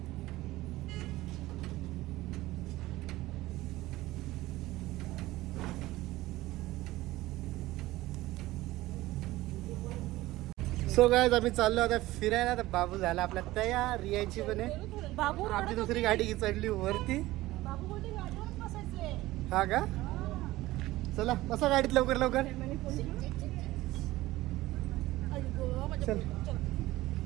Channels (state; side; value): quieter; left; 17.6 dB